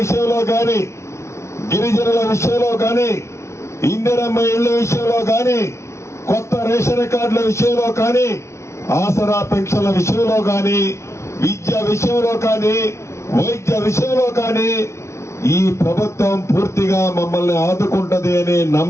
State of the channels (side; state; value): right; late; 0.13 ms